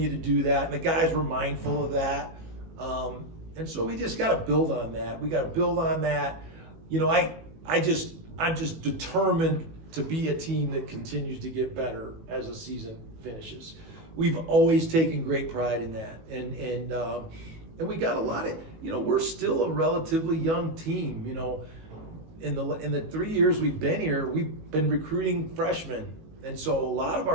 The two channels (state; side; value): late; left; 18 ms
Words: to do that. And the guys were mindful of that. And so we just got to build on that. We got to build on that. I'm just determined to be a team that continues to get better as the season finishes. We've always taken great pride in that. And we got a lot of, we're still a relatively young team. In the 3 years we've been here, we've been recruiting freshmen. And so a lot of